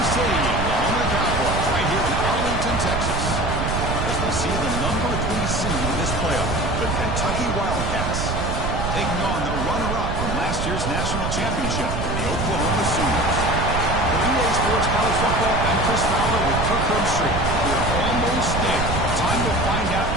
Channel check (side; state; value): right; noise; rumble, 2 dB below the sound